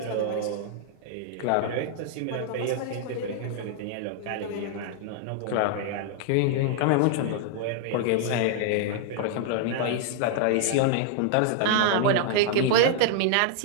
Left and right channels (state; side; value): different; both; correlation -0.01